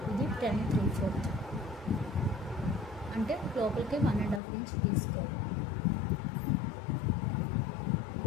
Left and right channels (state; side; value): drops out; right; at 4.4 s